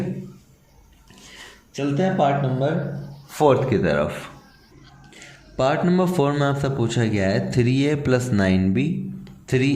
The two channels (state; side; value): identical; both; correlation 1.00